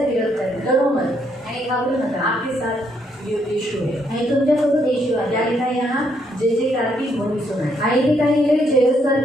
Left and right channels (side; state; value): both; normal; correlation 0.73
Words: विरोध करणार. डरो मत. आणि घाबरू नका. आपके साथ यीशु है. आणि तुमच्यासोबत येशू आहे. क्या लिखा है यहाँ, जय जयकार की ध्वनि सुनाई. आणि इथे काही लिहिले